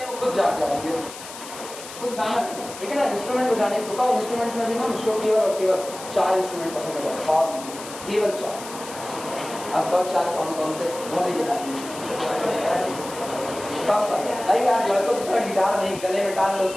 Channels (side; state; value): left; noise; hiss, 13 dB below the sound